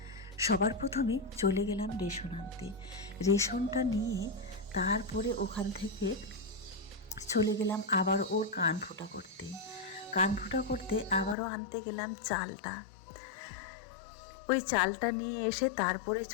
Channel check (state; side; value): drops out; right; at 11.4 s